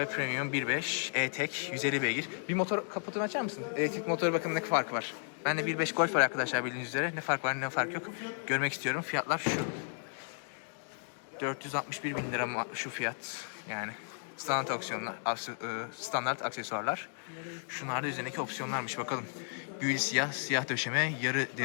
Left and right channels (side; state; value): right; silent; digital silence